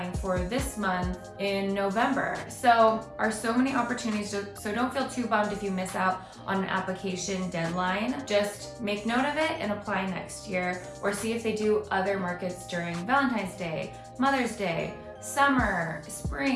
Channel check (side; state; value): both; identical; correlation 1.00